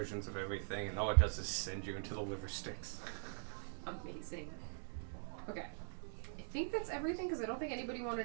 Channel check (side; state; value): left; silent; digital silence